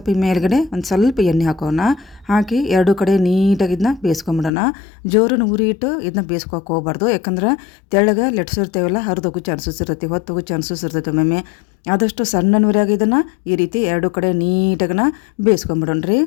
ಮೇಲ್ಗಡೆ ಒಂದು ಸ್ವಲ್ಪ ಎಣ್ಣೆ ಹಾಕೋಣ. ಹಾಕಿ ಎರಡು ಕಡೆ ನೀಟಾಗಿ ಇದನ್ನ ಬೇಯಿಸ್ಕೊಂಬಿಡೋಣ. ಜೋರನ್ನು ಉರಿ ಇಟ್ಟು ಇದನ್ನ ಬೇಯಿಸ್ಕೋಕೆ ಹೋಗ್ಬಾರ್ದು. ಯಾಕಂದ್ರೆ ತೆಳ್ಳಗೆ ಲಟ್ಸಿರ್ತೇವಲ್ಲ, ಹರಿದೋಗೋ ಚಾನ್ಸಸ್ ಇರ್ತೈತಿ, ಹೊತ್ತೋಗೋ ಚಾನ್ಸಸ್ ಇರ್ತೈತೆ ಒಮ್ಮೆ. ಆದಷ್ಟು ಸಣ್ಣ ನೂರ್ಯಾಗ ಇದನ್ನು ಈ ರೀತಿ ಎರಡು ಕಡೆ ನೀಟಾಗನ ಬೇಯಿಸ್ಕೊಂಬಿಡೋಣ ರೀ.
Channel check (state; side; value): drops out; right; at 4.5 s